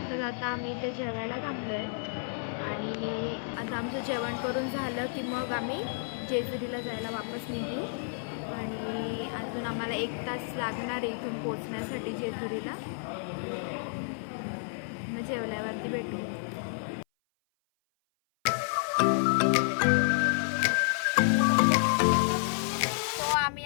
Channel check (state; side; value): silent; right; 56 dB below the other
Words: आम्ही इथे जेवायला थांबलोय आणि आता आमचं जेवण करून झालं की मग आम्ही जेजुरीला जायला वापस निघू। आणि अजून आम्हाला 1 तास लागणार आहे इथून पोहोचण्यासाठी जेजुरीला। मग जेवल्यावरती भेटू। तो आम्ही